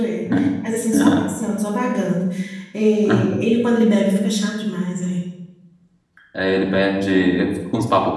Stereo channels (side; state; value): both; identical; correlation 1.00